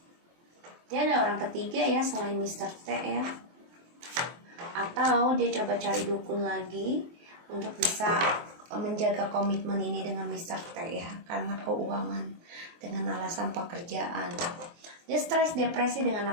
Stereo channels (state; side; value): late; left; 23 ms